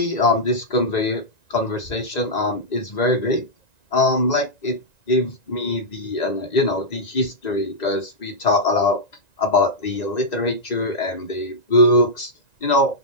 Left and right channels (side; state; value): right; late; 1.9 ms